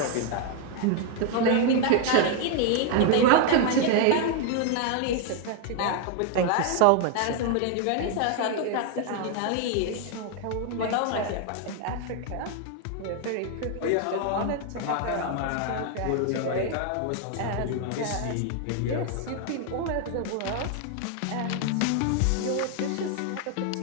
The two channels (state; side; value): different; both; correlation 0.00